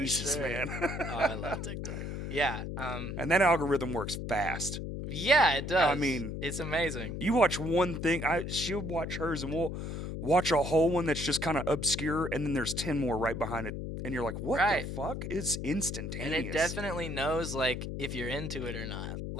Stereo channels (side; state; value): left; noise; hum, 5 dB below the sound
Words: for sure. man. Oh, I love TikTok. Yeah. And that algorithm works fast. Yeah, it does. I mean, it's amazing. You watch one thing, she'll watch hers, and we'll watch a whole one that's just kind of obscure, and then there's 10 more right behind it, and you're like, what the fuck? It's instantaneous. And it definitely knows, like, if you're into it or not.